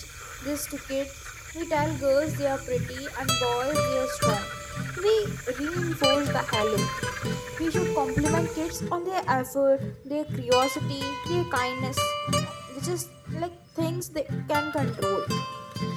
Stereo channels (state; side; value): identical; both; correlation 1.00